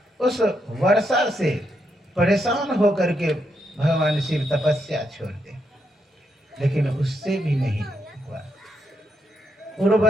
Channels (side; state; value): both; normal; correlation 0.80